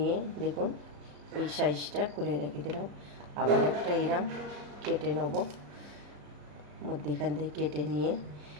দেখুন এই সাইজটা করে রেখে দিলাম। আবার একটা এরম কেটে নেব। মধ্যেখান থেকে কেটে নিয়ে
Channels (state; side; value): late; left; 34 ms